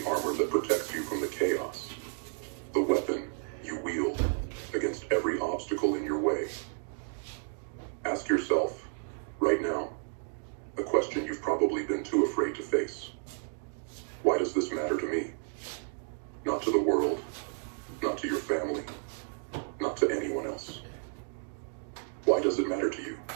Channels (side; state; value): left; silent; 55 dB below the other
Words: armor that protects you from the chaos, the weapon you wield against every obstacle in your way. Ask yourself, right now, a question you've probably been too afraid to face. Why does this matter to me? Not to the world, not to your family, not to anyone else. Why does it matter to you?